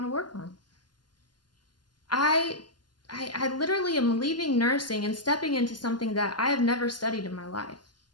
to work on. I literally am leaving nursing and stepping into something that I have never studied in my life.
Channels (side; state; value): right; late; 0.71 ms